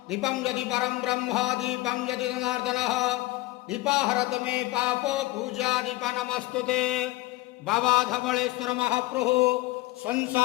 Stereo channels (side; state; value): right; quieter; 19.8 dB